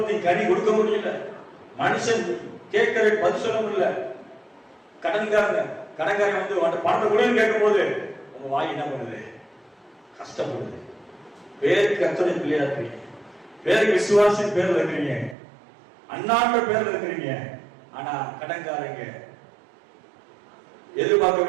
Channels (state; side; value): drops out; left; at 15.4 s